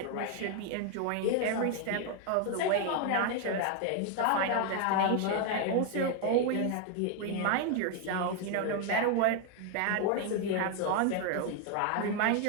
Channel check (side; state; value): both; different; correlation 0.01